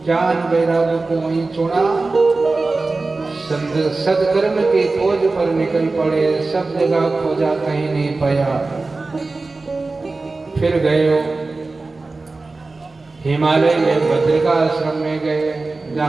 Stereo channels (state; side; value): quieter; left; 3.5 dB